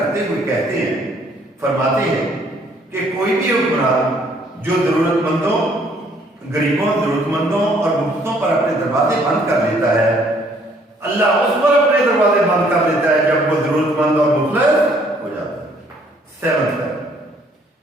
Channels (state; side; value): normal; both; correlation 0.63